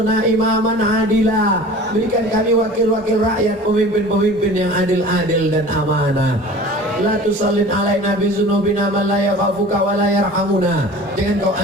imaman adila. Berikan kami wakil-wakil rakyat, pemimpin-pemimpin yang adil-adil dan amanah. La tusallin alaina bizunubina man la yakhafuka wa la yarhamuna. Jangan kau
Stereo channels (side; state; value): both; normal; correlation 0.41